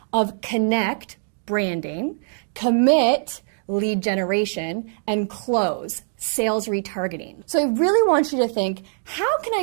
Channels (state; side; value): silent; left; digital silence